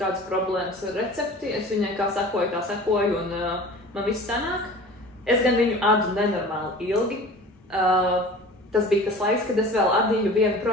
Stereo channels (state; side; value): normal; both; correlation 0.41